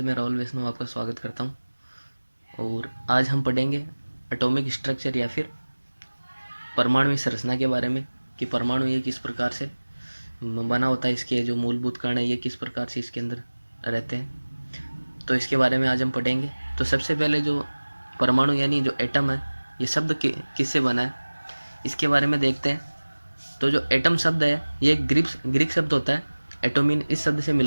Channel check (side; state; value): both; inverted; correlation -1.00